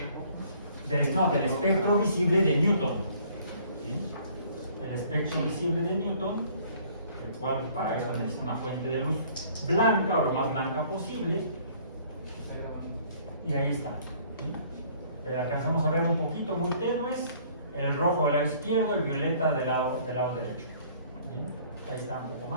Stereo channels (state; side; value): inverted; both; correlation -0.57